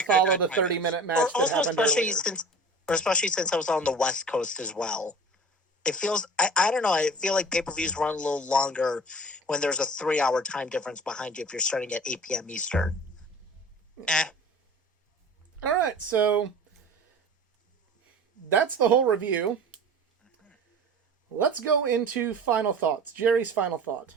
follow the 30-minute match that happened earlier. Especially since I was on the West Coast as well. It feels, I don't know, I feel like pay-per-views run a little longer when there's a 3-hour time difference behind you if you're starting at 8 p.m. Eastern. All right, so that's the whole review. Let's go into final thoughts. Jerry's final thought.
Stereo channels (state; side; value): normal; both; correlation 0.40